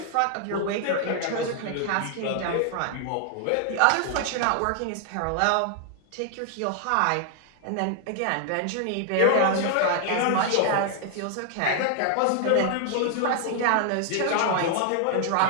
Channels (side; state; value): both; different; correlation 0.00